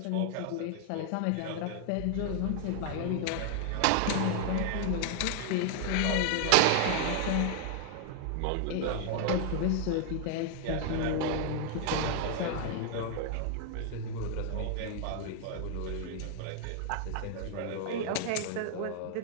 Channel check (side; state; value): both; different; correlation 0.00